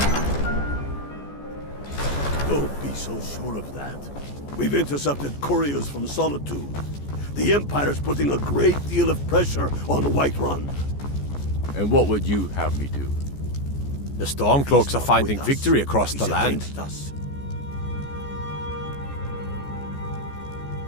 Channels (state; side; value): late; right; 14 ms